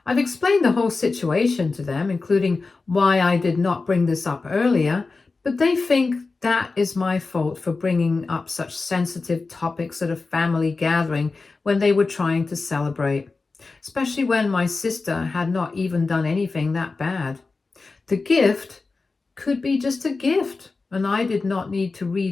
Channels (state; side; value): quieter; right; 4.0 dB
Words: I've explained the whole situation to them, including why I did not bring this up earlier, but they think that is my fault for bringing up such sensitive topics at a family gathering when they were trying to celebrate, especially when my sister had not even done anything that bad. The gift could be just a gift, and I did not need to